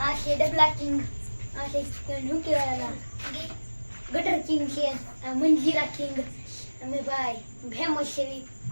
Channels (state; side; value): inverted; both; correlation -1.00